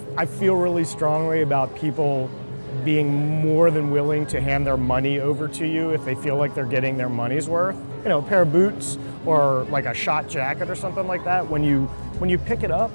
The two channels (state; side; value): inverted; both; correlation -1.00